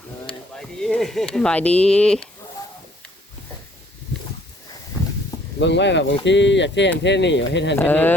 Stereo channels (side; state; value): both; normal; correlation 0.61